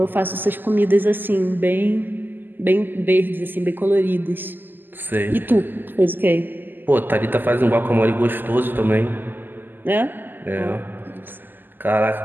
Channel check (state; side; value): late; left; 0.091 ms